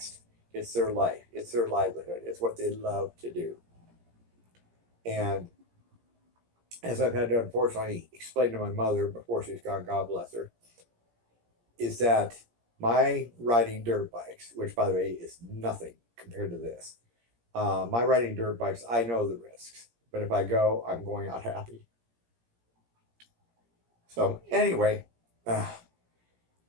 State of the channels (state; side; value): late; left; 17 ms